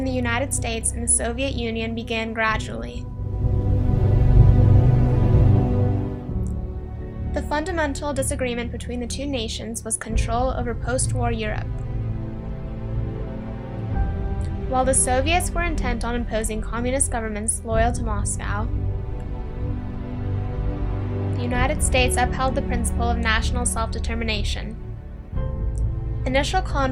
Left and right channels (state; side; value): identical; both; correlation 1.00